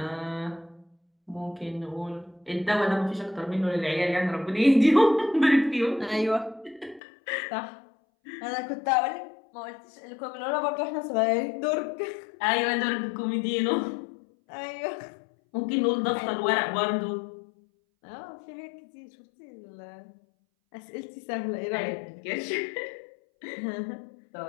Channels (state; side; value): drops out; right; at 7.0 s